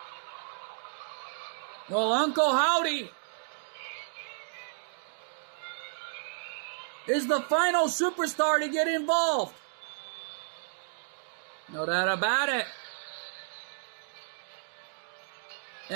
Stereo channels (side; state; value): left; silent; digital silence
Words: Well, Uncle Howdy is the final superstar to get involved. No doubt about it.